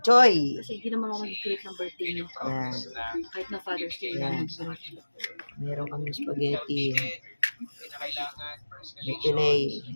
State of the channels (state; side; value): inverted; both; correlation -1.00